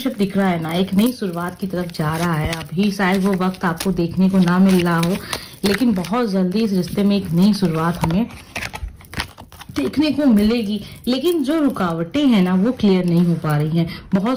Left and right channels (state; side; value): identical; both; correlation 1.00